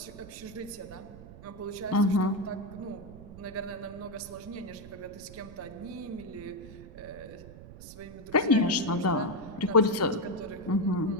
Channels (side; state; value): right; noise; rumble, 16 dB below the sound